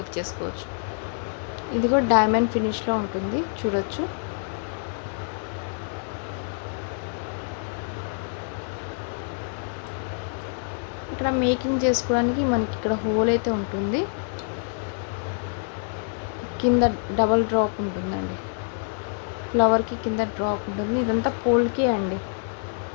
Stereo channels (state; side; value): silent; right; 57 dB below the other